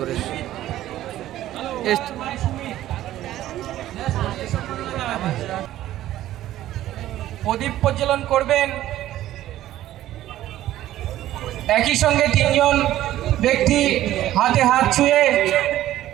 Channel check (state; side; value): quieter; left; 13.8 dB